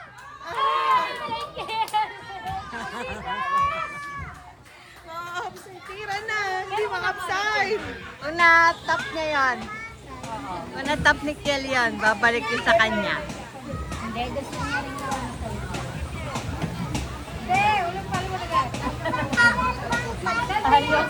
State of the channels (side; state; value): both; identical; correlation 1.00